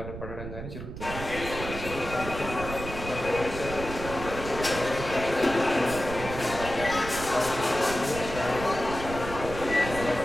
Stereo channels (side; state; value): right; noise; rumble, 9 dB below the sound